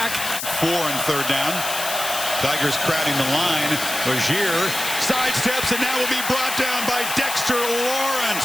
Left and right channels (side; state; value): left; noise; hiss, 5 dB below the sound